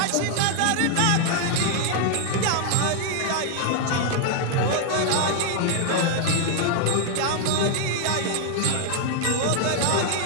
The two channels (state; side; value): different; both; correlation 0.00